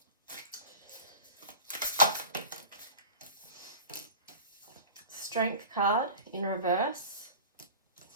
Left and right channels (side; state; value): both; inverted; correlation -0.36